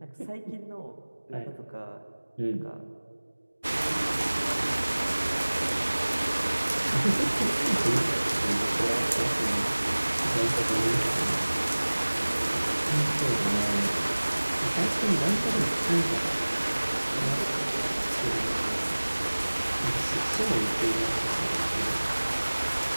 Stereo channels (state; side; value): inverted; both; correlation -1.00